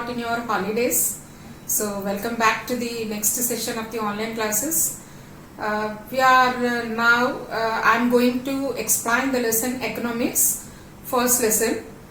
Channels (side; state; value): both; identical; correlation 1.00